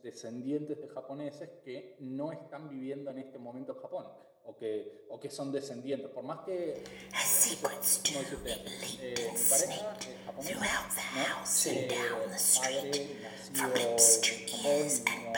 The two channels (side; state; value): both; identical; correlation 1.00